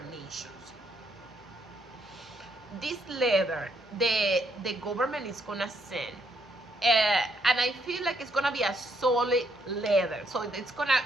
nations. This leather, the government is gonna send, and I feel like it's gonna be a solid leather. So it's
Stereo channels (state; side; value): normal; both; correlation 0.73